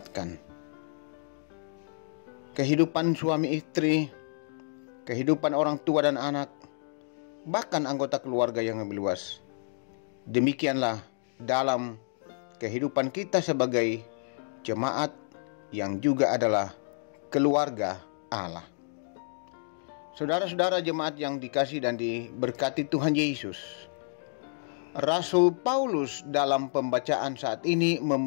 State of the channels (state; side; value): silent; right; digital silence